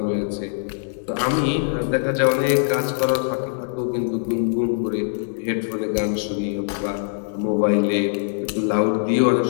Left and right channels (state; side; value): silent; right; digital silence